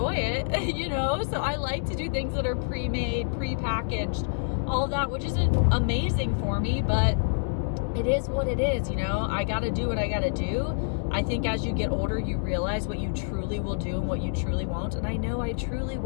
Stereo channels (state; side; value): silent; right; digital silence